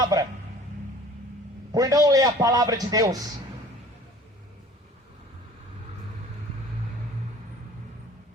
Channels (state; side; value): normal; both; correlation 0.48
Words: por não ler a palavra de Deus.